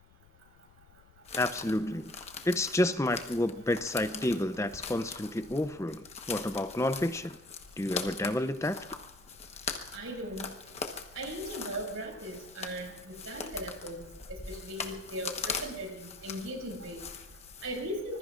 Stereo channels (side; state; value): left; noise; rumble, 27 dB below the sound